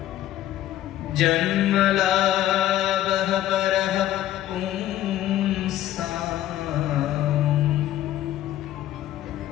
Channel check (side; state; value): right; quieter; 13.1 dB